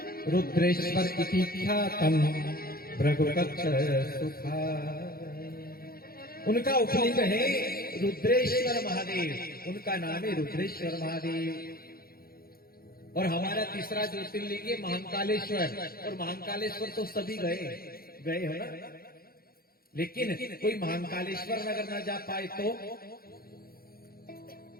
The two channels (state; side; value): late; right; 0.43 ms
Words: रुद्रेश्वर इति ख्यातम भृगुकच्छ सुखा। उनका उपलिंग है रुद्रेश्वर महादेव, उनका नाम है रुद्रेश्वर महादेव। और हमारा तीसरा ज्योतिर्लिंग है महाकालेश्वर, और महाकालेश्वर तो सभी गए हो ना, लेकिन कोई महाकालेश्वर अगर ना जा पाए तो